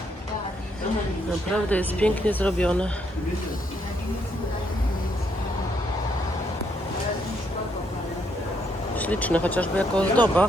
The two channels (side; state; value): both; normal; correlation 0.74